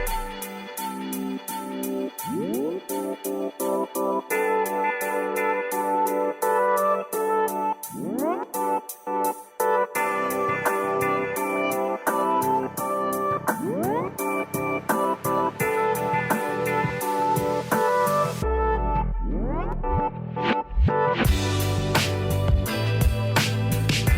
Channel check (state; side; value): identical; both; correlation 1.00